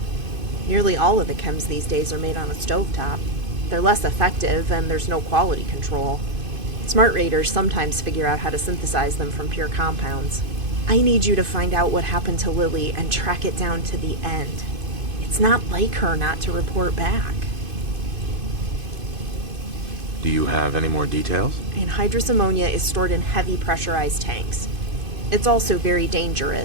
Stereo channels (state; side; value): late; left; 2.5 ms